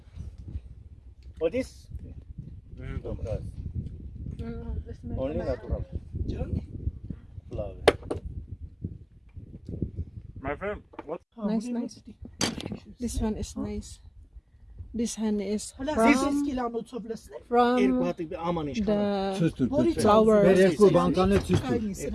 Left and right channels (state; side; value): identical; both; correlation 1.00